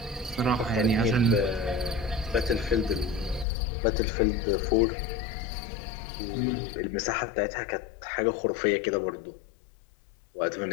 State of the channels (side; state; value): right; drops out; at 3.5 s